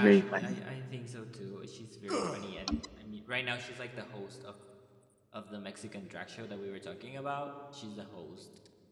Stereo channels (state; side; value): identical; both; correlation 1.00